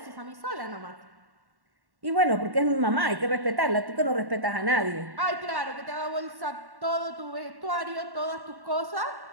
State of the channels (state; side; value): late; left; 1.1 ms